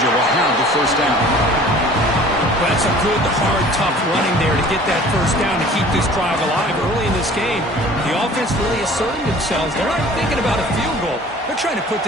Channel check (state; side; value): normal; both; correlation 0.48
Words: will have the first down. Well, that's a good, hard, tough running there to get that first down to keep this drive alive early in this game. The offense really asserting themselves. They're not thinking about a field goal. They're trying to put